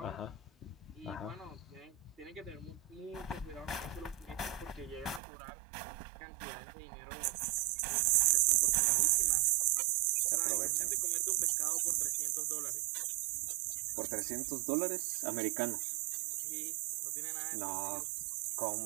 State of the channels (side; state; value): left; drops out; at 5.2 s